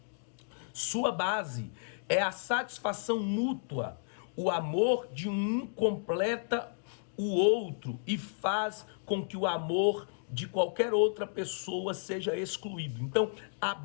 Sua base é a satisfação mútua. O amor de um completa o outro e faz com que o amor de qualquer outra pessoa seja excluído. Então, a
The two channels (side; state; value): right; silent; digital silence